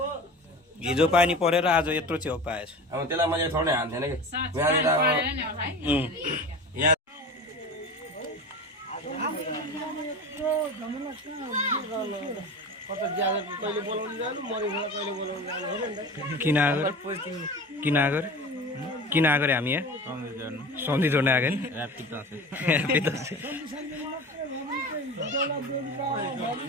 हिजो पानी परेर आज यत्रो च्याउ पाएछ अब त्यसलाई मैले थोरै हान्थेन कि कहिले बोलाउनु जानु मरेको कहिले बोलाउनु जानु हेर नि त किन आएको हामी यहाँ सन्धि जोड्न आएको नि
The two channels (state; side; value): normal; both; correlation 0.33